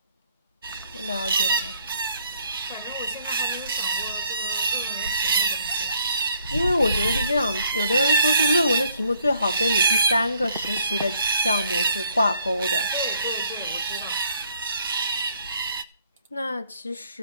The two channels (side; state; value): both; inverted; correlation -0.67